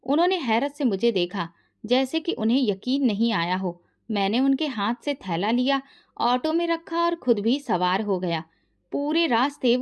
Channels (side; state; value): both; identical; correlation 1.00